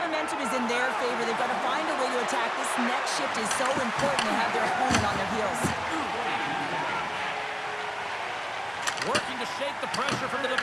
momentum is in their favor. They've got to find a way to attack. This next shift is so important to have their opponent on their heels. Working to shake the pressure from the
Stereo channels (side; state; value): both; identical; correlation 1.00